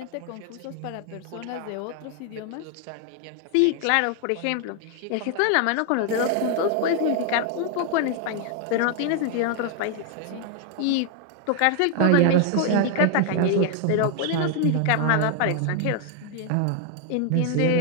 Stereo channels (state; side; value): different; both; correlation 0.00